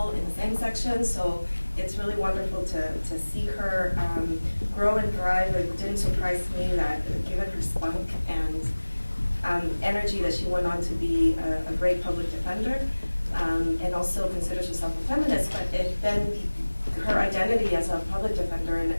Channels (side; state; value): both; inverted; correlation -1.00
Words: in the same section, so it's really wonderful to see her grow and thrive. It didn't surprise me that given her spunk and energy that she went on to be a great public defender and also considers herself a feminist, but then her identity as a public defender